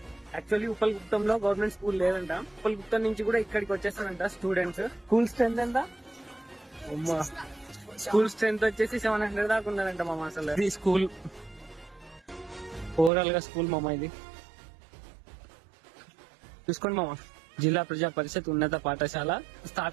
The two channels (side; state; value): left; drops out; at 13.1 s